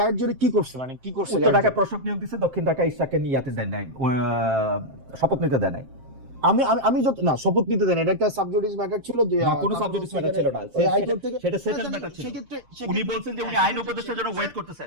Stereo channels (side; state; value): left; late; 7.6 ms